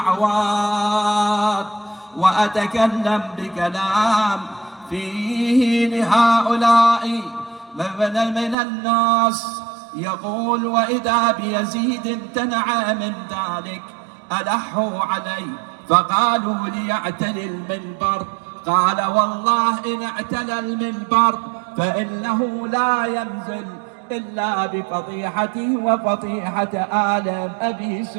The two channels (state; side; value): drops out; left; at 8.6 s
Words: وأتكلم بكلام فيه لهؤلاء من الناس. يقول وإذا بيزيد امتنع من ذلك، ألحوا عليه فقالوا ليعتلي المنبر، قال والله إن اعتلى المنبر فإنه لا ينزل إلا بفضيحته وفضيحة آل أبي